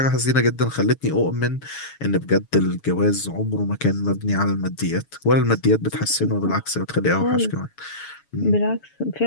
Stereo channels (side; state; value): right; late; 7.1 ms